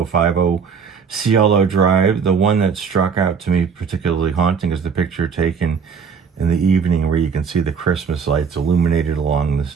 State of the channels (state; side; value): quieter; left; 6.2 dB